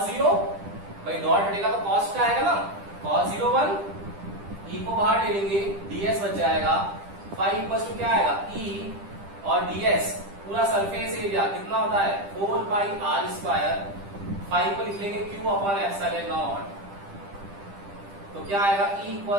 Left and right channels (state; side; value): late; left; 10 ms